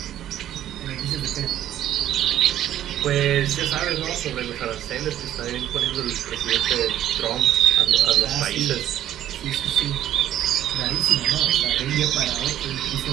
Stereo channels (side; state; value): left; quieter; 11.9 dB